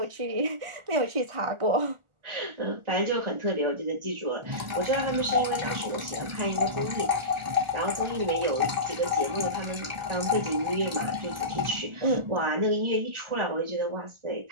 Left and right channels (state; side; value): late; left; 1.4 ms